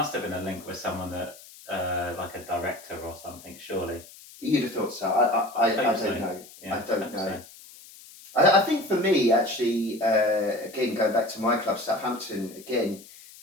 have been a link with someone that like a director or something, surely. You'd have thought so. I don't know. Yeah, I don't know. So. I think for me, actually, again, going back to my club, Southampton, again,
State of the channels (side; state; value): left; noise; hiss, 20 dB below the sound